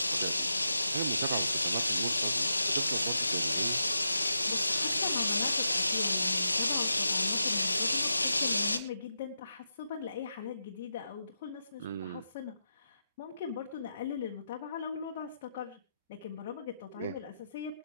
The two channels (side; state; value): both; inverted; correlation -0.86